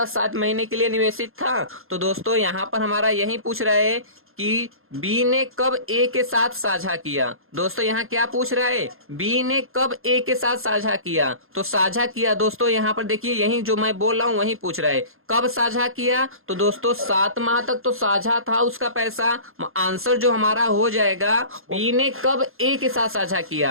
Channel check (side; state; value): left; late; 0.61 ms